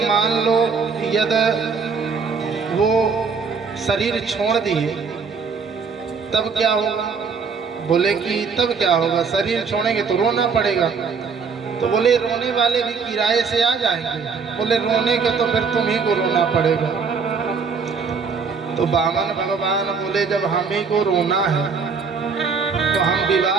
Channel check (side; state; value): left; quieter; 5.4 dB